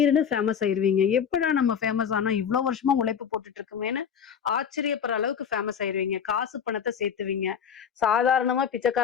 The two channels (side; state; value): right; quieter; 7.6 dB